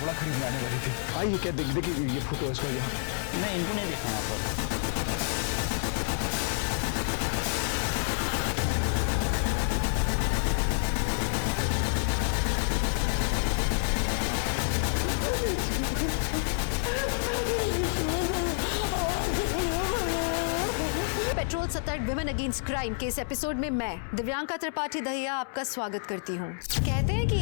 खरीदने आने वाली थी। आइए, क्या देखिए ये फोटो है इसका यहाँ। नहीं, इनको नहीं देखा यहाँ पर। पेट्रोल सतर्क विमेन अगेंस्ट क्राइम के इस एपिसोड में मैं दिव्यांका त्रिपाठी दहिया आपका स्वागत करती हूँ। कहते हैं कि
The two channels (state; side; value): silent; right; 59 dB below the other